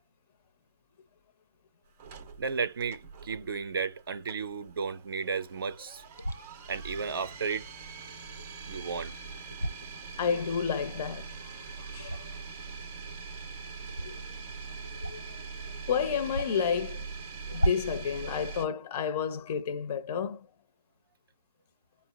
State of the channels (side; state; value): both; inverted; correlation -0.57